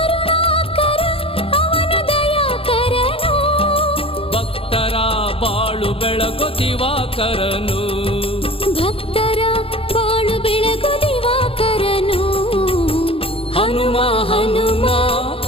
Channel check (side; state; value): right; late; 0.27 ms